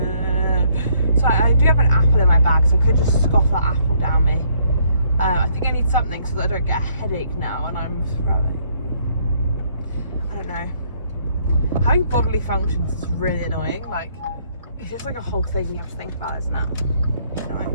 so I do have an apple in my bag, so I could just scoff that apple down me. I think I need something so that I don't get a headache now and I'm throwing. I don't know. Having bodily functions is really annoying. Like, it's just like a whole thing you have to think about, isn't it?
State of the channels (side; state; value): both; inverted; correlation -0.67